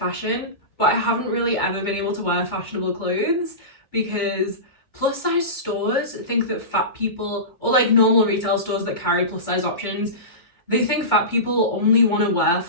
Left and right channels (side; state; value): right; late; 2.2 ms